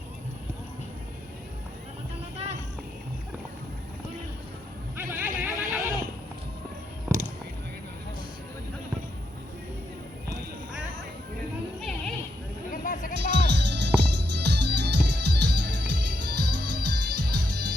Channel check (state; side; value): normal; both; correlation 0.80